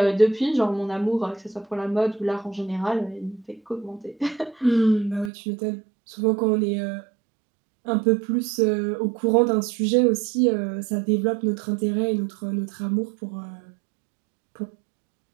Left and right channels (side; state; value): left; drops out; at 5.3 s